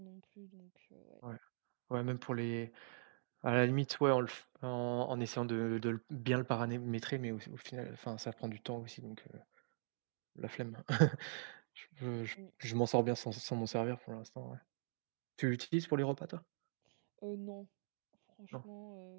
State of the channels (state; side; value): silent; left; digital silence